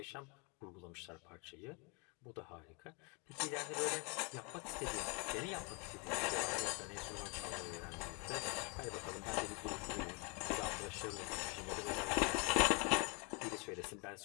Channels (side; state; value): right; quieter; 32.2 dB